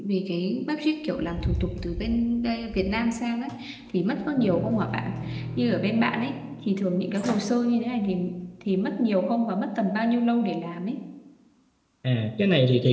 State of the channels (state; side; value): identical; both; correlation 1.00